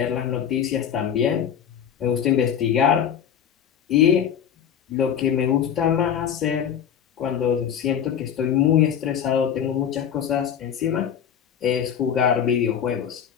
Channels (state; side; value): quieter; right; 8.6 dB